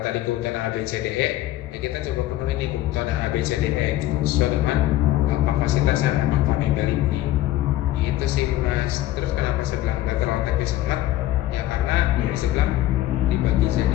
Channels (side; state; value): right; quieter; 14.7 dB